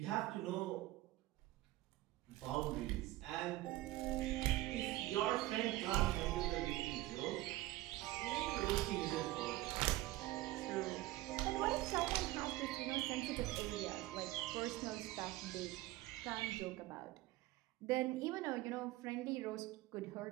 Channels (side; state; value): left; quieter; 17.4 dB